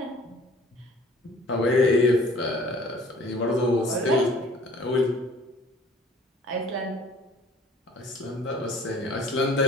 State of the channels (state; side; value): normal; both; correlation 0.52